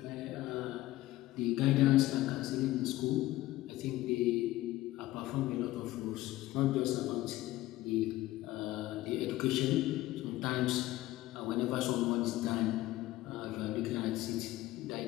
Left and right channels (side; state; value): right; quieter; 16.5 dB